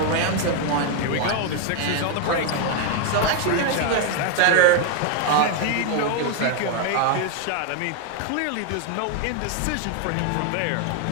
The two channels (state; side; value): different; both; correlation 0.01